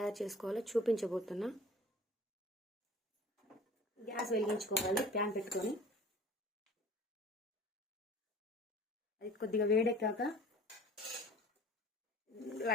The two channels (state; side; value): normal; both; correlation 0.45